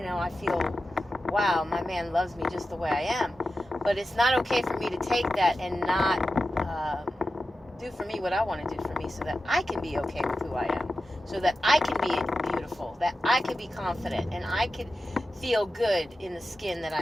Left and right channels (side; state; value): both; normal; correlation 0.92